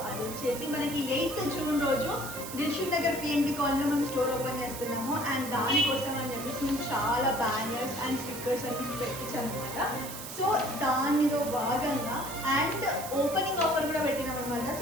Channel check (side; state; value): right; noise; hiss, 10 dB below the sound